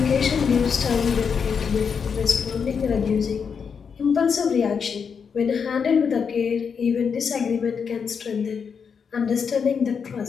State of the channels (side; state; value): right; quieter; 6.3 dB